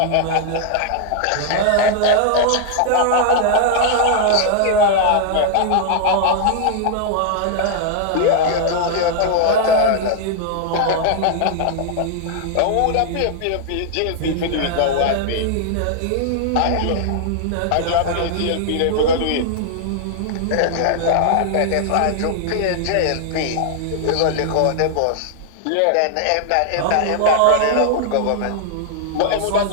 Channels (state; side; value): different; both; correlation -0.01